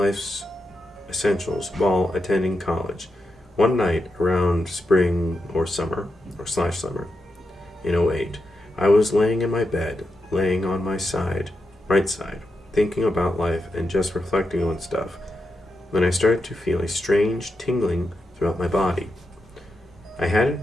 essentials while attending college. One night around spring or summer, or slash summer, in '08, I was laying in my bed, laying on my right side, thinking about life and just reflecting on stuff, when I started to feel a strange tingling throughout my body. I hadn't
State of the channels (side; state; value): both; normal; correlation 0.87